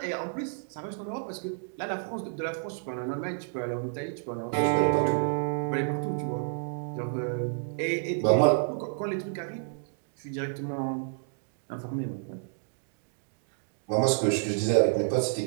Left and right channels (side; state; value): left; silent; digital silence